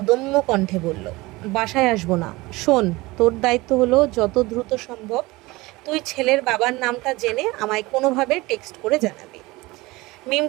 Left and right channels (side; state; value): left; quieter; 21.4 dB